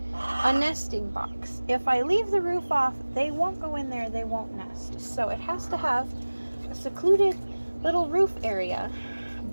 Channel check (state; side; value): inverted; both; correlation -1.00